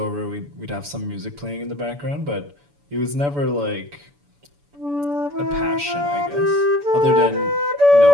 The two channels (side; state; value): left; late; 7.0 ms